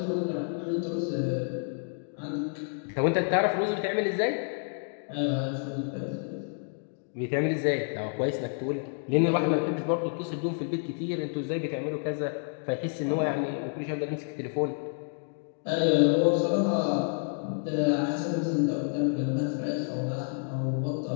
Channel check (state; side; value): silent; right; 58 dB below the other